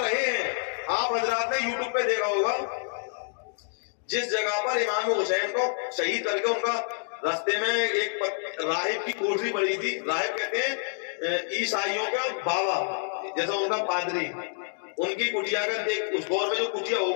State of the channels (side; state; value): right; silent; digital silence